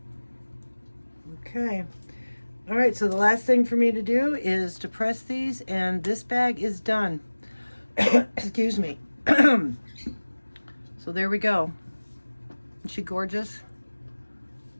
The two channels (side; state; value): both; inverted; correlation -1.00